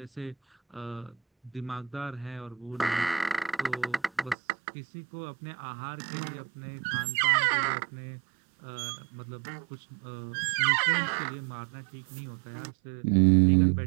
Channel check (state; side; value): drops out; left; at 4.4 s